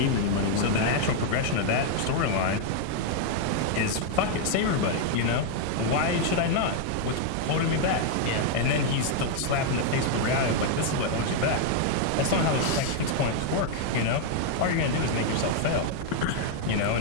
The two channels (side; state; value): both; different; correlation 0.00